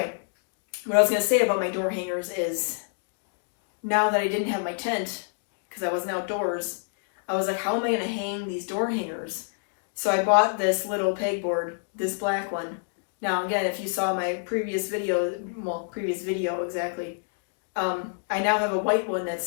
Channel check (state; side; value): silent; right; digital silence